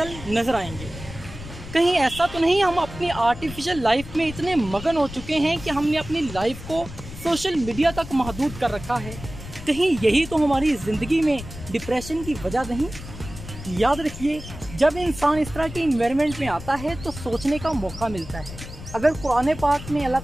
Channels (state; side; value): noise; left; rumble, 13 dB below the sound